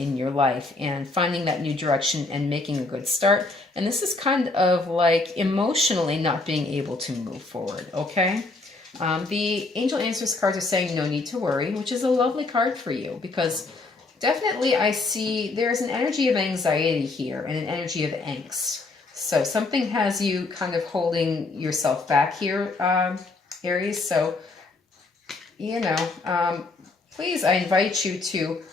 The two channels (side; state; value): right; quieter; 3.5 dB